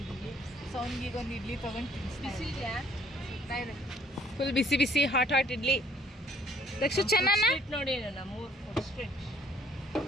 ಸೊ ಅವ್ನಿಗೆ ಒಂದು ಇಡ್ಲಿ ತೊಗೊಂಡು ತಿನ್ನಿಸ್ತಿದ್ಯಾ? ಫುಲ್ ಬಿಸಿ ಬಿಸಿ ಹಾಟ್ ಇಡ್ಲಿ. ದಕ್ಷ ಚೆನ್ನಾನ ನೋಡಿ ನಮ್ಮ ಫುಡ್ ಸ್ಟ್ರೀಟ್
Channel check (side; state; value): both; normal; correlation 0.60